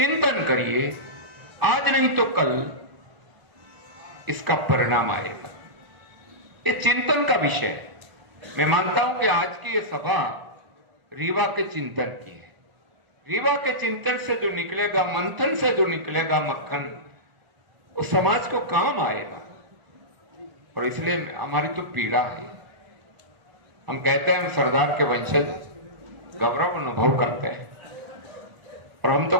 करिए, आज नहीं तो कल इसका परिणाम आएगा। ये चिंतन का विषय है। मैं मानता हूं कि आज की ये सभा रीवा के चिंतन की है। रीवा के चिंतन से जो निकलेगा, मंथन से जो निकलेगा मक्खन, वो समाज को काम आएगा। और इसलिए हमारी तो पीड़ा है। हम कहते हैं हम सरदार के वंशज, गौरव अनुभव करते हैं। और हम तो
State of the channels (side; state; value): left; late; 1.0 ms